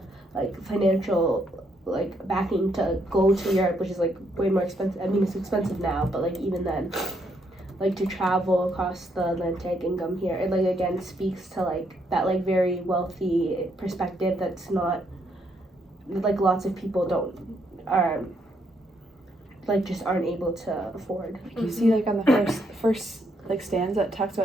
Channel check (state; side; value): normal; both; correlation 0.74